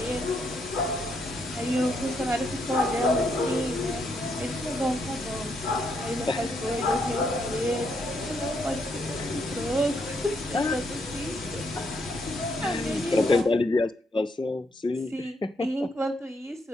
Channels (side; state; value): both; normal; correlation 0.75